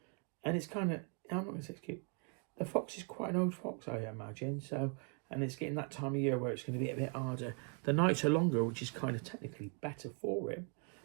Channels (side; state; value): left; quieter; 37.7 dB